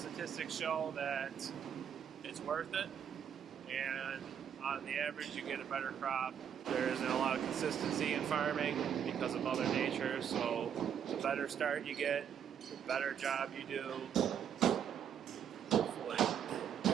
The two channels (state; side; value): quieter; left; 8.5 dB